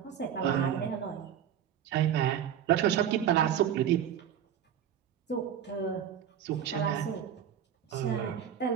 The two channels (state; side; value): quieter; left; 9.4 dB